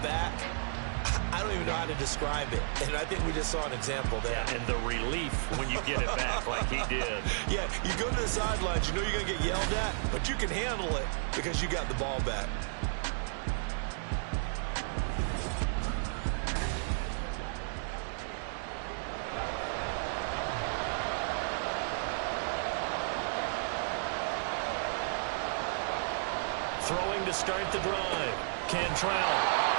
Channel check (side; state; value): left; silent; digital silence